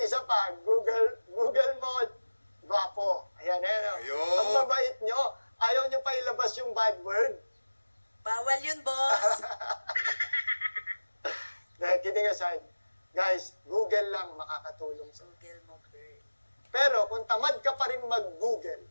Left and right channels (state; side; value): inverted; both; correlation -1.00